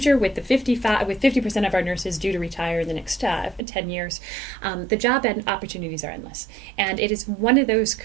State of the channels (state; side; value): drops out; left; at 3.6 s